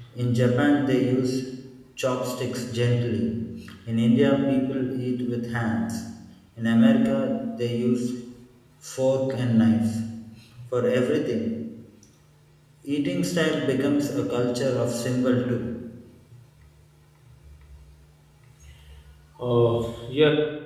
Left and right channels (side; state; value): both; identical; correlation 1.00